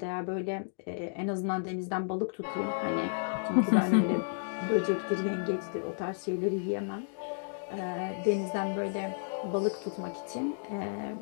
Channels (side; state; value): right; silent; digital silence